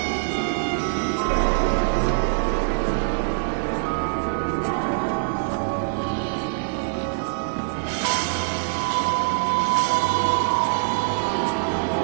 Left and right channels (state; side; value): silent; left; 60 dB below the other